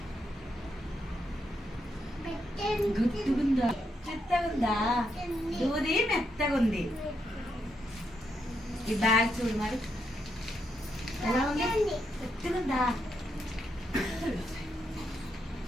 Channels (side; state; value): both; normal; correlation 0.80